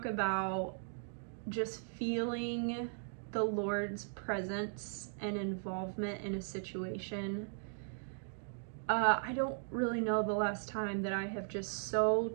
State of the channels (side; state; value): left; silent; digital silence